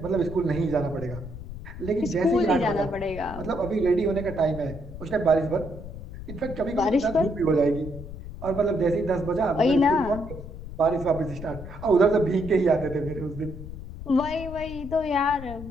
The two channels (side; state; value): left; noise; rumble, 11 dB below the sound